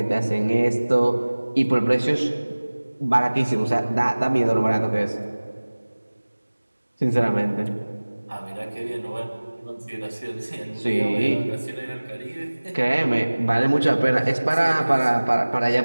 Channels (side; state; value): both; inverted; correlation -1.00